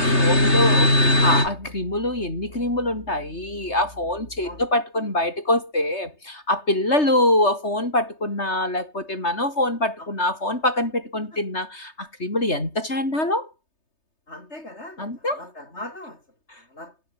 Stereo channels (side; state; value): right; late; 3.3 ms